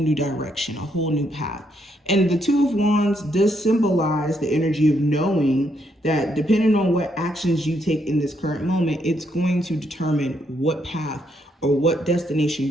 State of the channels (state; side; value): normal; both; correlation 0.75